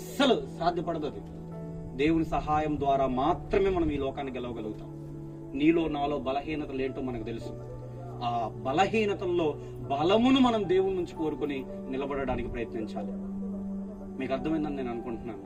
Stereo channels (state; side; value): identical; both; correlation 1.00